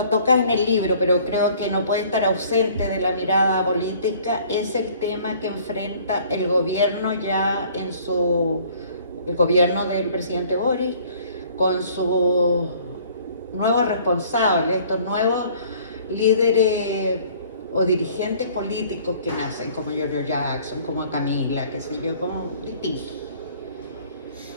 tocas en el libro, pero creo que no puede estar ausente de la mirada política, es el tema que enfrenta el gobierno ya el gobierno del presidente Boric, con sus nuevos responsables, estos nuevos líderes o dirigentes políticos que nacen, como Giorgio Jackson, como Camila, qué sé yo, como distintos.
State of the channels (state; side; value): inverted; both; correlation -0.55